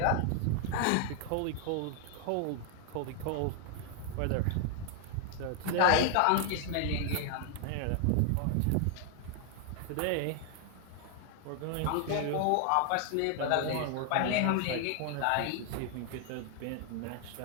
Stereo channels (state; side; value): different; both; correlation 0.00